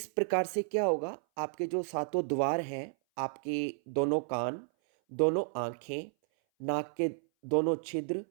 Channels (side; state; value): left; silent; 56 dB below the other